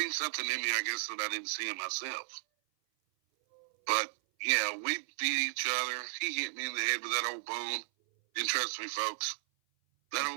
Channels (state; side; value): silent; left; 55 dB below the other